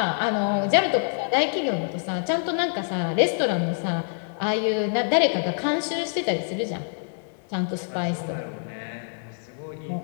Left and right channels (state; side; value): silent; right; digital silence